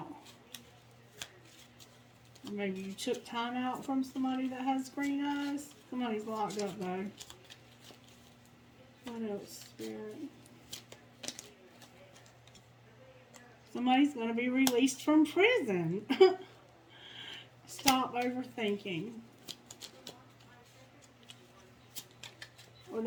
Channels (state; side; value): identical; both; correlation 1.00